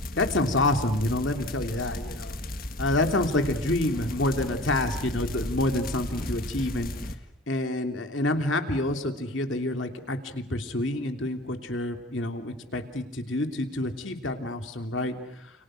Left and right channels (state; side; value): normal; both; correlation 0.42